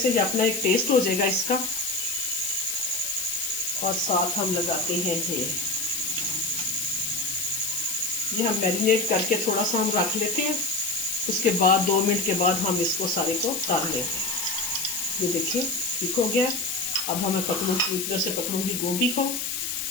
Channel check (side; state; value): left; noise; hiss, 3 dB below the sound